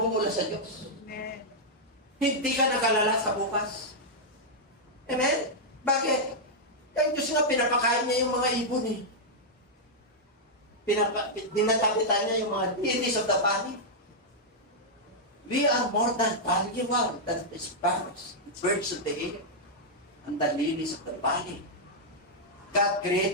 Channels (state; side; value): normal; both; correlation -0.06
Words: sa Diyos. Amen. Hindi ka nakalala sa bukas. Amen? Bakit? Ang Diyos nga, pinapakain niya yung mga ibon eh. Dinatapitan niya yung mga lilies of the valley. We are more than valuable than the sparrows, the birds of the air, and the lilies of the valley. God